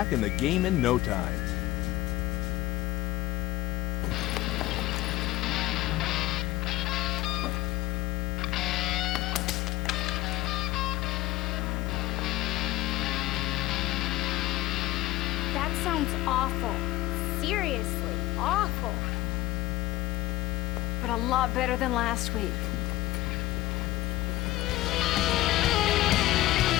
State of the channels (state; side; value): quieter; right; 17.2 dB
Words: in the game in no time. That sounds awful. Seriously, awful. But a lot better than last week.